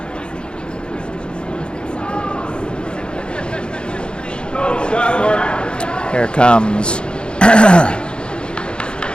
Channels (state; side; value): late; right; 0.052 ms